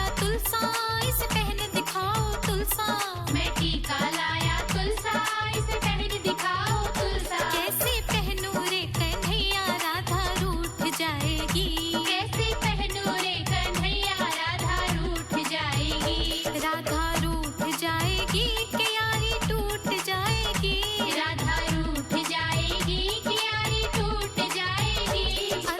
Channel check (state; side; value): identical; both; correlation 1.00